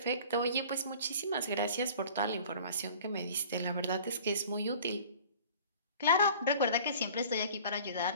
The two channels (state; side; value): inverted; both; correlation -0.46